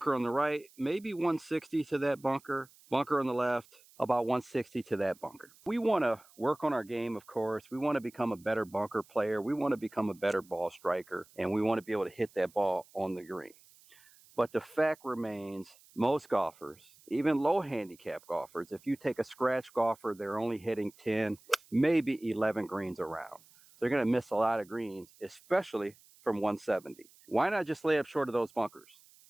on the right, maybe 160 to that bunker. Bunker on the left, about 160 to that bunker. We want to work on our game, of course. We want to become a better bunker player. We want to become a better ball striker, and we want to be able to hit that ball on the green. But the fact remains, most golfers, even low handicap golfers, if you take a scratch golfer, they're only hitting 10, maybe 11 greens around. So they're going to miss a lot of greens, especially from 170. Why not just lay up short of those bunkers?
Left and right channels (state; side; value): noise; right; hiss, 26 dB below the sound